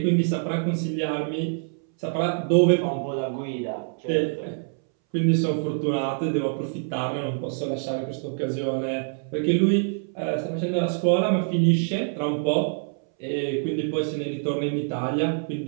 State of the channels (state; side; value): silent; left; 61 dB below the other